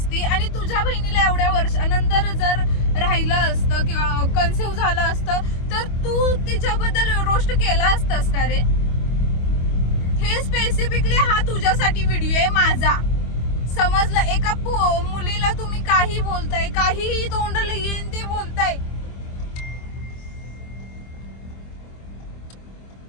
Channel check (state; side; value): late; right; 25 ms